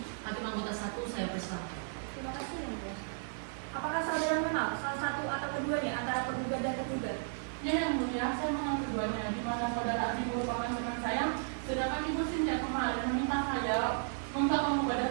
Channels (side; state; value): left; silent; digital silence